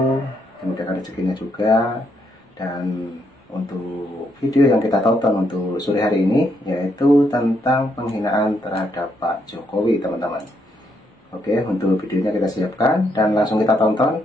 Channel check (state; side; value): normal; both; correlation 0.76